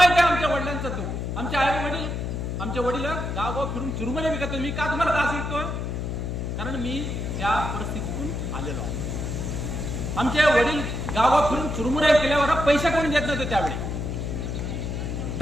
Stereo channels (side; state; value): left; noise; hum, 3 dB below the sound